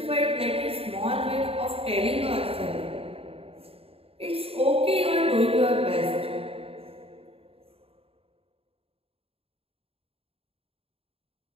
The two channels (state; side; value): late; left; 0.28 ms